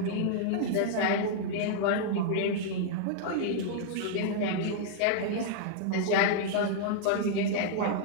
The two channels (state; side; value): different; both; correlation -0.01